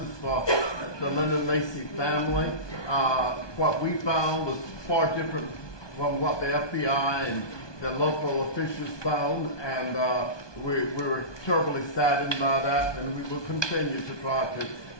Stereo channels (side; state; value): right; late; 1.2 ms